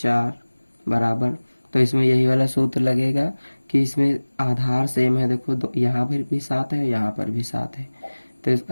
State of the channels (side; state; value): both; inverted; correlation -1.00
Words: बराबर, तो इसमें यही वाला सूत्र लगेगा कि इसमें आधार सेम है। देखो यहाँ पर भी 7 है, यहाँ पर भी 7 है, तो